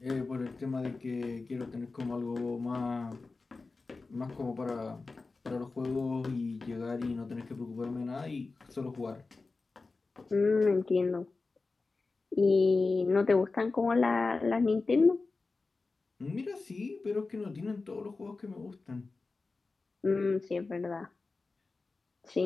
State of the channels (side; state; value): right; quieter; 3.8 dB